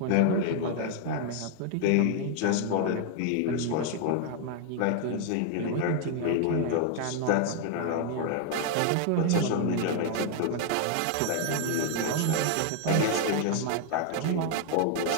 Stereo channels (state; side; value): different; both; correlation 0.00